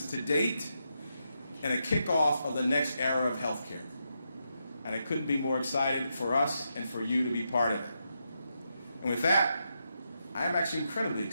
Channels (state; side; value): inverted; both; correlation -0.83